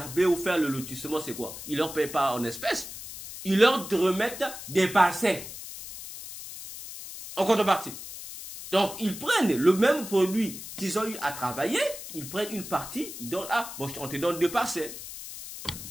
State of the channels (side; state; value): left; noise; hiss, 11 dB below the sound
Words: ou faire le lotissement, c'est quoi? Ils ne leur payent pas en espèces. Ils leur remettent des parcelles en contrepartie. Donc, ils prennent le même produit qu'ils ont eu à travailler, ils prennent une partie, ils donnent, on te donne 2 parcelles.